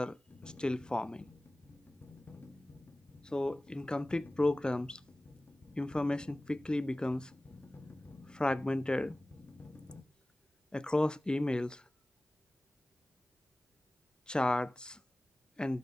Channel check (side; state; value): both; normal; correlation 0.98